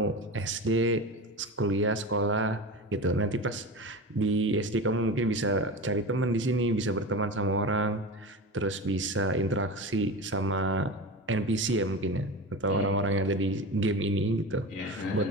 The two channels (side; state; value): both; normal; correlation 0.27